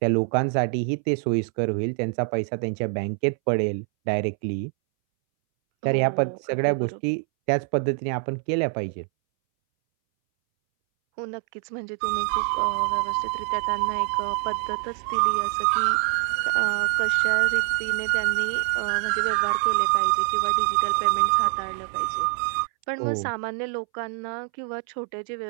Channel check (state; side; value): silent; left; 62 dB below the other